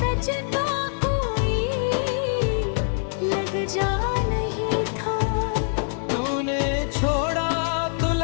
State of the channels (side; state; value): right; silent; 62 dB below the other